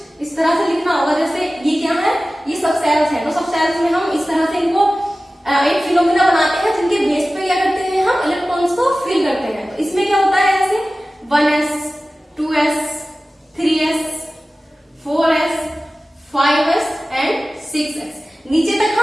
इस तरह से लिखना होगा। जैसे ये क्या है, ये सब सेल्स है, तो सब सेल्स में हम इस तरह से इनको एक फिनोमिना बना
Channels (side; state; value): both; normal; correlation 0.96